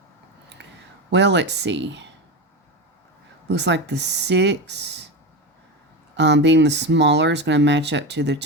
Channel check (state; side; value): normal; both; correlation 0.20